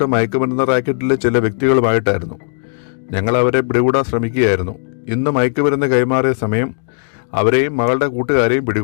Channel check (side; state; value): right; silent; digital silence